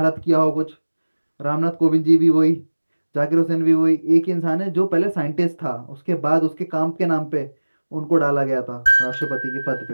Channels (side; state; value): both; inverted; correlation -1.00